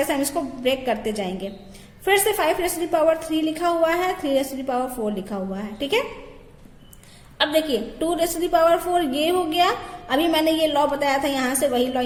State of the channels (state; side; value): identical; both; correlation 1.00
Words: से हम इसको ब्रेक करते जाएंगे. फिर से 5⁻³ लिखा हुआ है, 3⁻4 लिखा हुआ है. ठीक है, अब देखिए 2⁻4 ये हो गया. अभी मैंने ये लॉ बताया था, यहाँ से वही लॉ